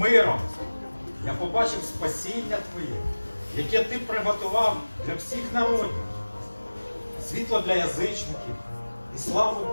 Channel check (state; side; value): inverted; both; correlation -1.00